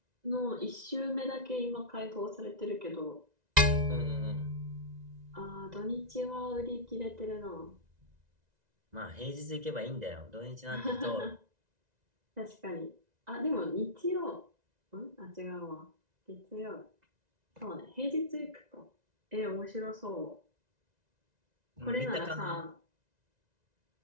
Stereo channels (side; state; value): left; late; 1.9 ms